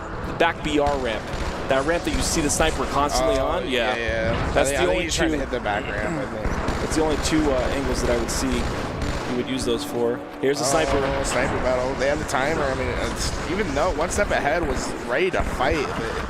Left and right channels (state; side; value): identical; both; correlation 1.00